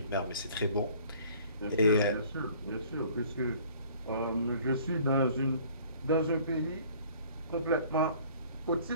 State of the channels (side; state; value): both; inverted; correlation -0.53